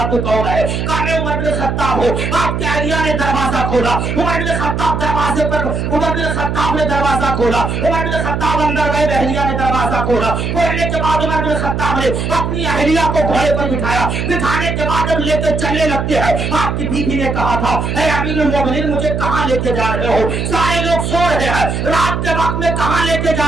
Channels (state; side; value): noise; right; hum, 2 dB below the sound